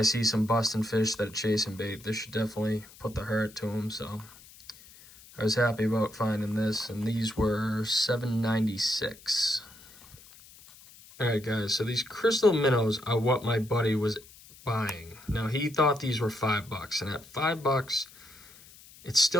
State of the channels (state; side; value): noise; left; hiss, 22 dB below the sound